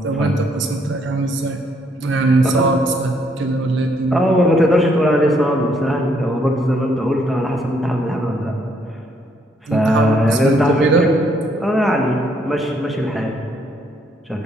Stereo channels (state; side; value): normal; both; correlation 0.70